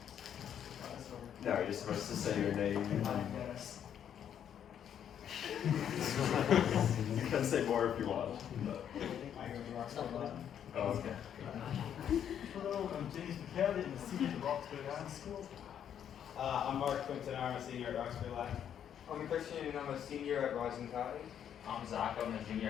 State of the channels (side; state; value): right; quieter; 9.2 dB